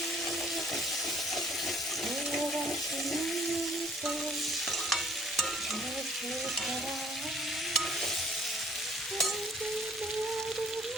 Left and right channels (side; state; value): both; normal; correlation 0.58